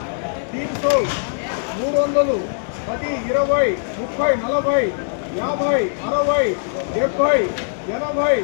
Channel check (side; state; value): right; silent; digital silence